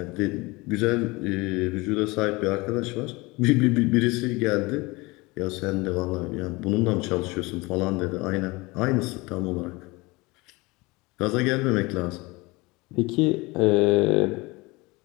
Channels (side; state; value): right; quieter; 23.7 dB